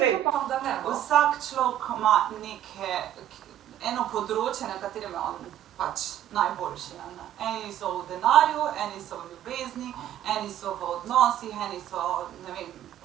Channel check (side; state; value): left; quieter; 11.6 dB